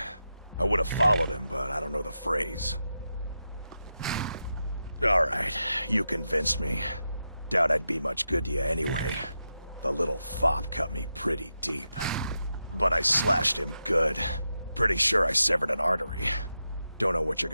I would have followed him, but I don't know the phrase. Alright, you convinced me. Doubt I'd be much good to you anyway. The little fop cut me pretty deep. But I slashed him good. Pretty sure I severed an artery. Don't know what you're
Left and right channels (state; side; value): inverted; both; correlation -0.88